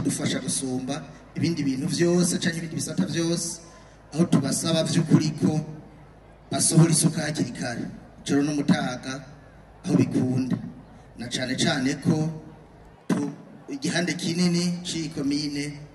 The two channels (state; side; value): identical; both; correlation 1.00